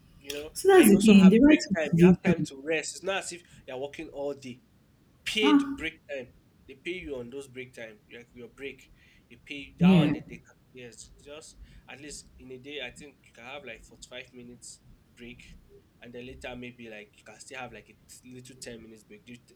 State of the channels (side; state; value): both; identical; correlation 1.00